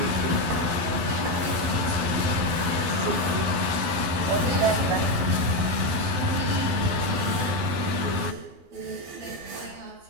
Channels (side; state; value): left; late; 12 ms